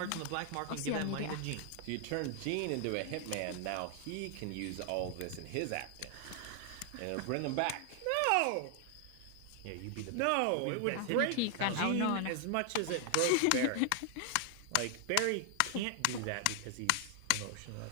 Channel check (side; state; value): both; different; correlation 0.00